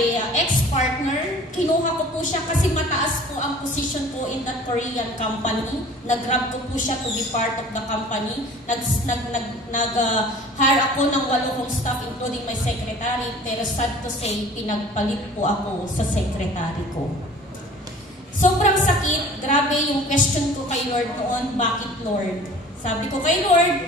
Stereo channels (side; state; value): both; normal; correlation 0.46